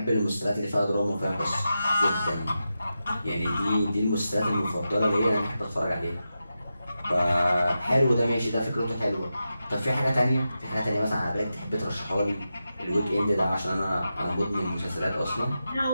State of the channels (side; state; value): both; inverted; correlation -0.90